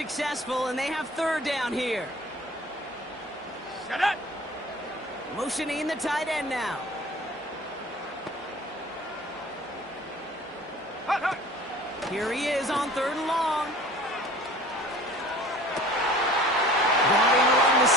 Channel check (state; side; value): normal; both; correlation 0.46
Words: and they have third down here. Shut up. Motioning the tight end now. Hut, hut. Here he is on third and long. Running along the